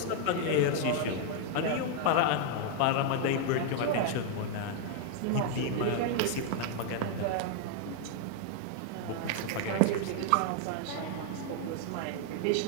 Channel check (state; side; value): different; both; correlation 0.00